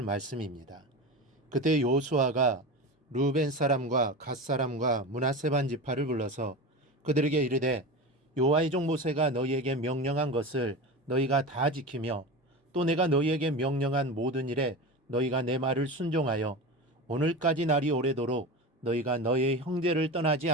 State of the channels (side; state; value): both; normal; correlation 0.26